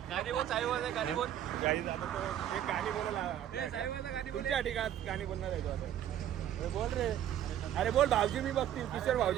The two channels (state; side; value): quieter; left; 11.0 dB